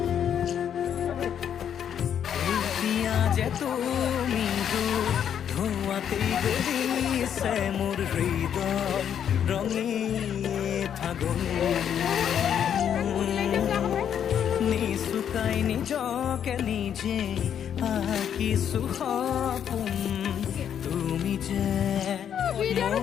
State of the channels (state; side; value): quieter; right; 8.9 dB